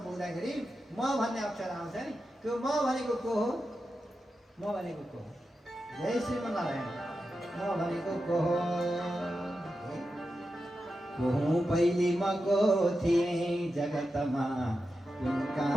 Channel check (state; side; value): normal; both; correlation 0.90